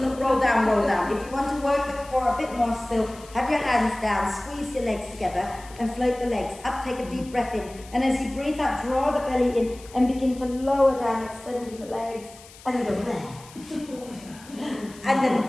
down, roll down. If you want to work the core a bit more still, have your hands down, squeeze your legs together and float the legs up. Take a deep breath in. And as you breathe out, draw the belly in and begin to lower down, extending the legs. And then go there. And then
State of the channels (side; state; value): left; noise; hiss, 21 dB below the sound